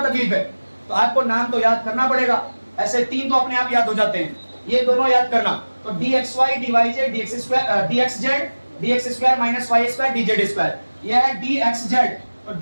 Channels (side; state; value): both; inverted; correlation -1.00